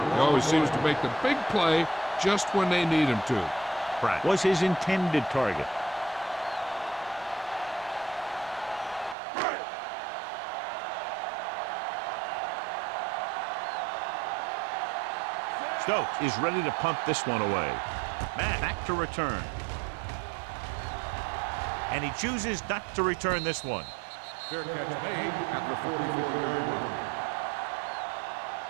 always seems to make the big play just when they need him to. Pratt was his intended target. Stokes is ready to punt this one away. Matt back to return. And he chooses not to return this one. Fair catch made at the 44-yard line.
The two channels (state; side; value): drops out; left; at 9.2 s